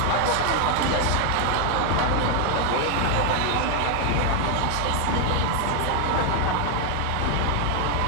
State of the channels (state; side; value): different; both; correlation 0.00